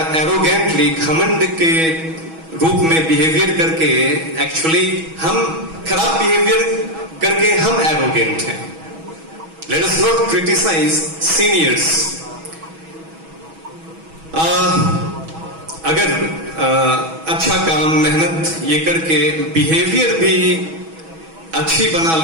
एरोगेंटली, घमंड के रूप में बिहेवियर करके, एक्चुअली हम खराब बिहेवियर करके हम एरोगेंट हैं। Let us not criticise seniors. अगर अच्छा काम, मेहनत ये करके बिहेवियर भी अच्छी बना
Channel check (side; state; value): left; late; 6.2 ms